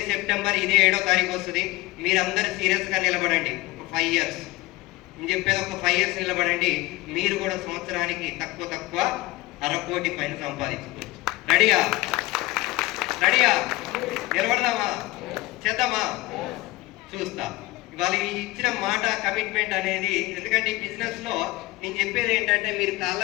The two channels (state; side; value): quieter; right; 20.1 dB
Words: సెప్టెంబర్, ఇదే 7వ తారీఖు వస్తుంది. మీరందరూ సీరియస్గా నిలబడండి. ఒక 5 ఇయర్స్ నేను చెప్పేది, ఒక 5 ఇయర్స్ నిలబడండి. మీరు కూడా సంవత్సరానికి తక్కువ 1/2 కోటి పైన సంపాదించుకోవచ్చు. రెడీయా? నిలబడదామా? చేద్దామా? చూస్తా. ఇవాళ ఈ ఇచ్చిన మాట కమిట్మెంట్ అనేది, ఎందుకంటే ఈ బిజినెస్ లో నేను చెప్పేది ఏంటంటే మీరు కాళ్ళ